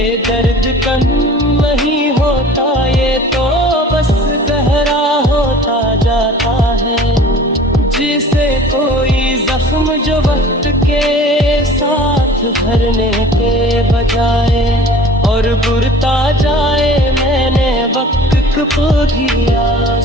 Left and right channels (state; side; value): normal; both; correlation 0.45